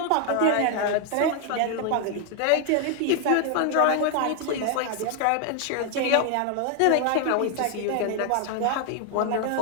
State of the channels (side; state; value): both; different; correlation 0.00